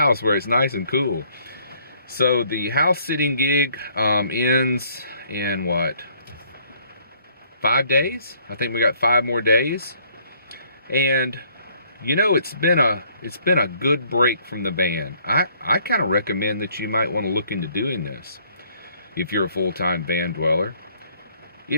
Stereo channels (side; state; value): both; inverted; correlation -0.63